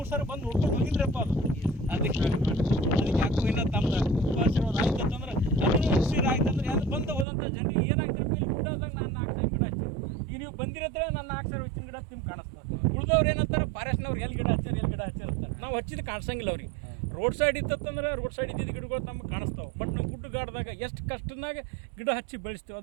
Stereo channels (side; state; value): left; drops out; at 7.2 s